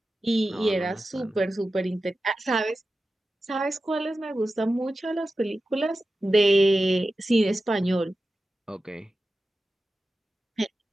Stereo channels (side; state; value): both; normal; correlation 0.93